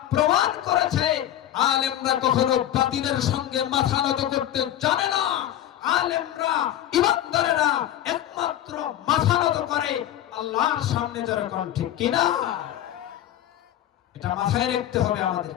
প্রমাণ করেছে আলেমরা কখনো বাতিলের সঙ্গে মাথা নত করতে জানে না। আলেমরা ইমানদারেরা একমাত্র মাথা নত করে আল্লাহর সামনে, যারা কোন ঠিক কিনা, এটা মাথায় রাখতে হবে আমাদের।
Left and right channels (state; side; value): quieter; right; 12.2 dB